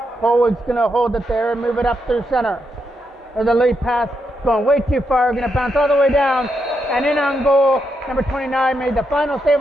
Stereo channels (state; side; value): normal; both; correlation 0.82